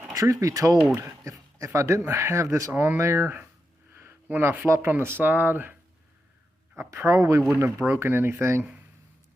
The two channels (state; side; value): normal; both; correlation 0.87